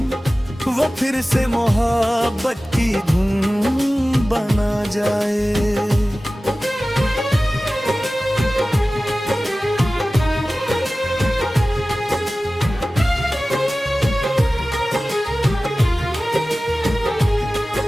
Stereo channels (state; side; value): normal; both; correlation 0.96